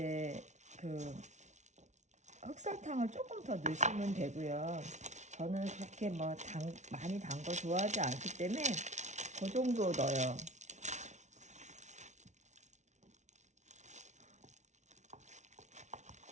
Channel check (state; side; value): late; left; 0.34 ms